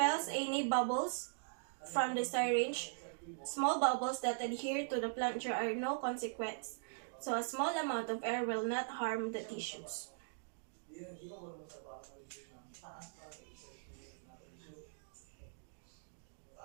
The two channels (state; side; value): silent; left; digital silence